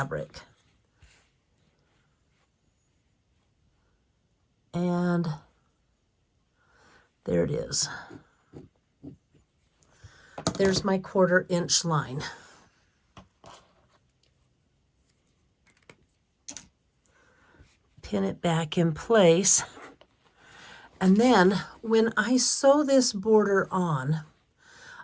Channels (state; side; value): identical; both; correlation 1.00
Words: And there it is. There's my 1/4 inch line. Pin it back in place. And then when I sew this border on,